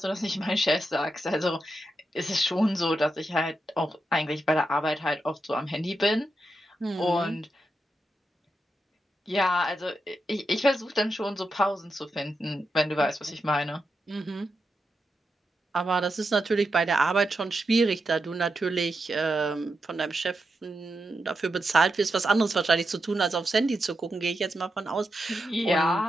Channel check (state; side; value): normal; both; correlation 0.87